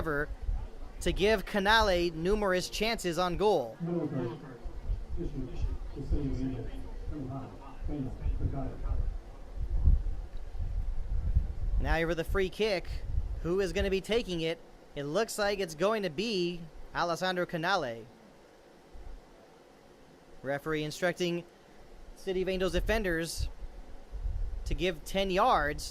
to give Canale numerous chances on goal. Now here with the free kick. Who is going to be taking it? It looks like it's going to be Alessandro Canale. Referee instructing City of Angels defenders to give 10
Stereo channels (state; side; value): identical; both; correlation 1.00